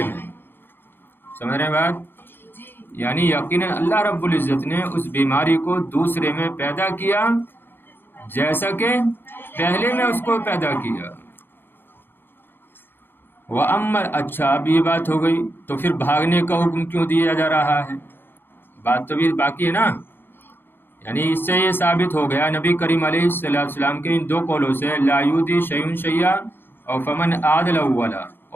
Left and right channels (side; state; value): right; late; 0.10 ms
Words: میں. سمجھ رہے ہیں بات؟ یعنی یقیناً اللہ رب العزت نے اس بیماری کو دوسرے میں پیدا کیا جیسا کہ پہلے میں اس کو پیدا کیا. اچھا اب یہ بات ہو گئی تو پھر بھاگنے کا حکم کیوں دیا جا رہا ہے؟ بات تو بھی باقی ہے نا. یعنی اس سے یہ ثابت ہو گیا نبی کریم علیہ السلام کے ان دو قولوں سے لا یؤذی شیء شیئا اور فمن عادل اولا،